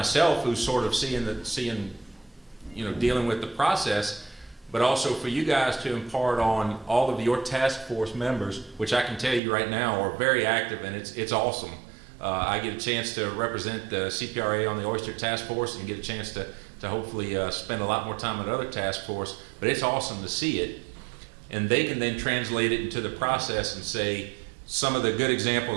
who's sort of seeing dealing with the process, but also for you guys to impart on all of your task force members, which I can tell you right now are very active, and it's awesome. I get a chance to represent the CPRA on the Oyster Task Force and get a chance to hopefully spend a lot more time at other task force, but it's awesome to see it. And they can then translate it into the process and say some of the good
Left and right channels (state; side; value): drops out; left; at 9.4 s